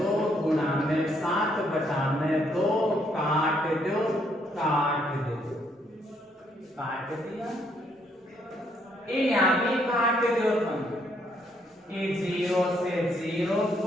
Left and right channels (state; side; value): normal; both; correlation 0.71